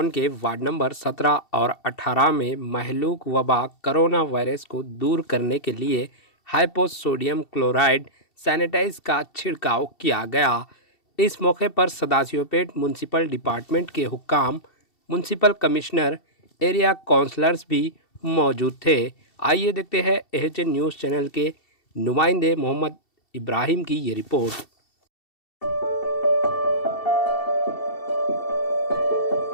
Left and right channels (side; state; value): right; late; 2.7 ms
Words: के ward number 17 और 18 में महलूक वबा कोरोना वायरस को दूर करने के लिए हाइपोसोडियम क्लोराइड सैनिटाइज का छिड़काव किया गया। इस मौके पर सदाशिवपेट म्यूनसिपल डिपार्टमेंट के हुक्काम, म्यूनसिपल कमिश्नर, एरिया काउंसलर्स भी मौजूद थे। आइए देखते हैं एचएन न्यूज़ चैनल के नुमाइंदे मोहम्मद इब्राहिम की ये रिपोर्ट।